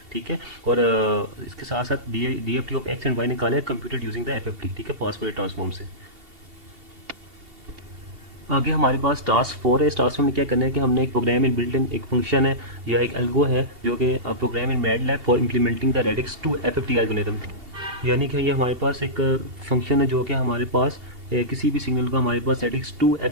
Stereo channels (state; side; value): late; left; 2.8 ms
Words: ठीक है, और इसके साथ साथ DFT of x and y निकाला है कंप्यूटेड यूजिंग द FFT। ठीक है, फास्ट फॉरवर्ड ट्रांसफॉर्म से। आगे हमारे पास टास्क 4 है। इस टास्क में क्या करना है कि हमने एक प्रोग्राम इन बिल्ट इन एक फंक्शन है या एक एल्गो है जो कि program in MATLAB for implementing the radix two FFT algorithm, यानी कि ये हमारे पास एक फंक्शन है जो कि हमारे पास किसी भी सिग्नल को हमारे पास रेडिक्स टू